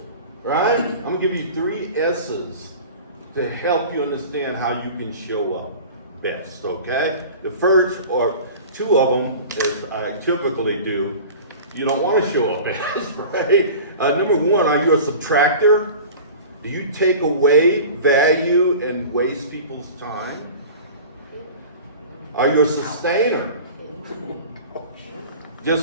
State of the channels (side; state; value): both; inverted; correlation -0.38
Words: right? I'm going to give you 3 S's to help you understand how you can show up best, okay? The first, or 2 of them, as I typically do, you don't want to show up best, right? Number 1, are you a subtractor? Do you take away value and waste people's time? Are you a sustainer?